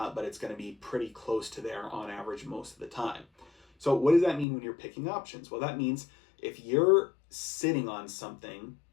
it's going to be pretty close to there on average most of the time. So what does that mean when you're picking options? Well, that means if you're sitting on something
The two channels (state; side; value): drops out; right; at 4.5 s